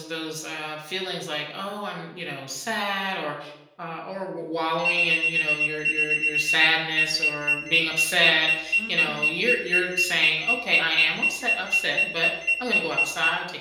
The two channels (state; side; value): identical; both; correlation 1.00